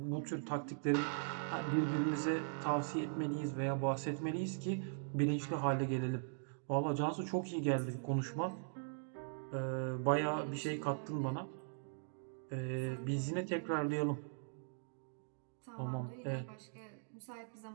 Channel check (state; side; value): silent; left; digital silence